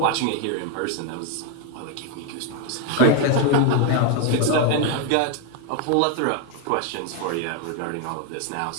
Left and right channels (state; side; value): different; both; correlation 0.01